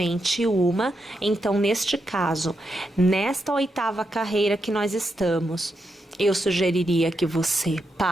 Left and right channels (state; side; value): normal; both; correlation 0.84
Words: uma. Então, neste caso, nesta 8ª carreira que nós estamos, eu sugeriria que você